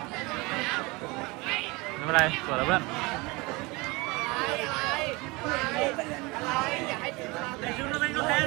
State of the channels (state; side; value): quieter; left; 24.8 dB